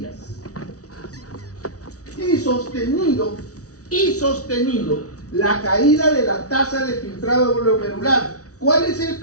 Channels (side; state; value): right; late; 0.67 ms